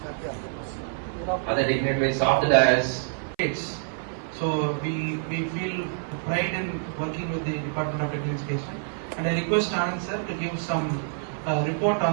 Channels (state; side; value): silent; left; 56 dB below the other